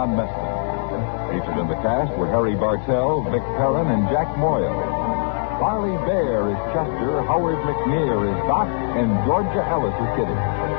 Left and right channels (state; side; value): silent; right; 62 dB below the other